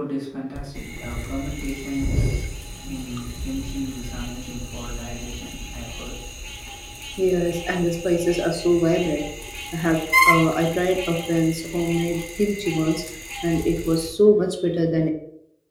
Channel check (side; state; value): both; identical; correlation 1.00